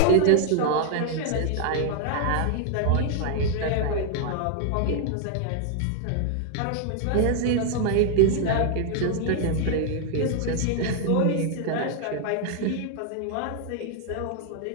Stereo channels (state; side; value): different; both; correlation 0.00